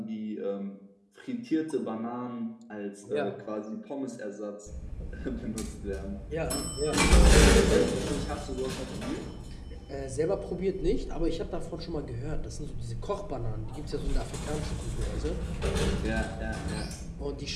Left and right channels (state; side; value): identical; both; correlation 1.00